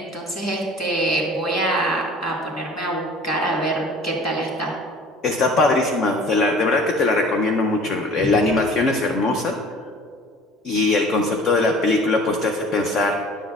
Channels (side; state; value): both; normal; correlation 0.47